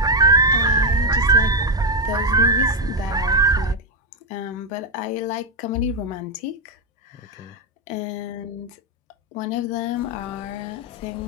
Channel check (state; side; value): normal; both; correlation 0.05